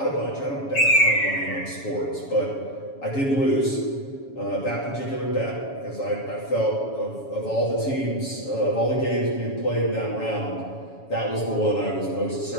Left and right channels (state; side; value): late; right; 7.2 ms